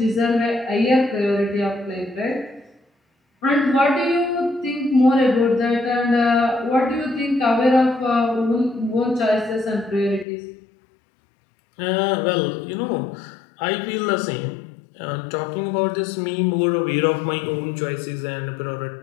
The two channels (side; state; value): right; drops out; at 10.2 s